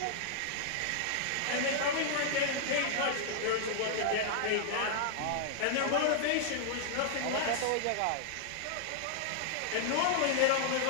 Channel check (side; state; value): both; different; correlation -0.01